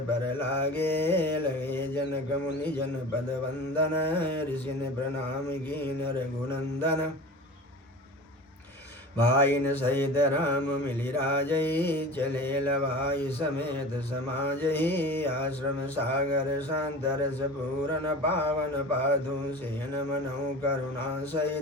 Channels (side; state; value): both; normal; correlation 0.35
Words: पर लागे लगे जनक मुनि जन पद वंदन ऋषि ने प्रणाम कीन रघुनंदन भाइन सहित राम मिलि राजै चले लवाई समेत समाजहि आश्रम सागर शांत रस पूरन पावन पाधु सेन मनौ करुणा